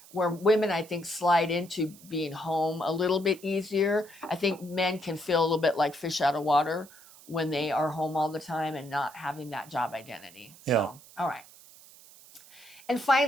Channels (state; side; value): noise; right; hiss, 22 dB below the sound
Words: where women I think slide into being home a little bit easier. I think men can feel a little bit like fish out of water when they are home all the time and not having that job identity. Yeah. So, all right. And